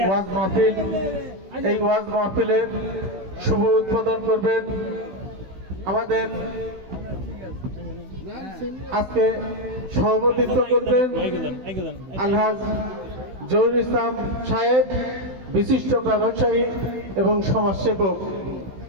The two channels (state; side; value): late; left; 16 ms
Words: মাহফিল, এই ওয়াজ মাহফিলের শুভ উদ্বোধন করবেন আমাদের আজকে সভাপতিত্ব করবেন আলহাজ জহুরুল ইসলাম সাহেব, বিশিষ্ট ব্যবসায়ী এবং সমাজসেবক।